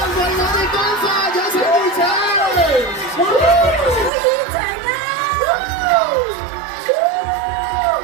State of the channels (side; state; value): left; drops out; at 4.1 s